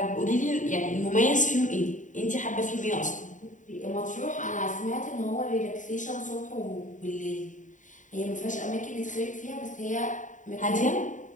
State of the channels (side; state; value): right; late; 0.37 ms